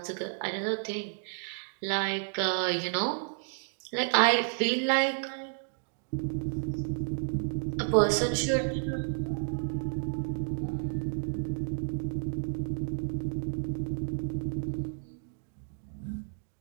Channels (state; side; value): silent; left; digital silence